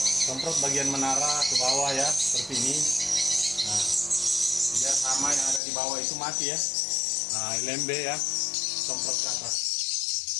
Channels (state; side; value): drops out; right; at 5.6 s